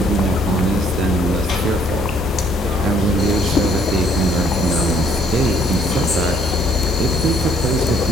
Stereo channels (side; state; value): both; normal; correlation 0.64